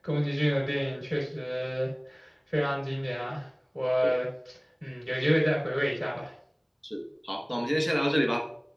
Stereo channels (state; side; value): identical; both; correlation 1.00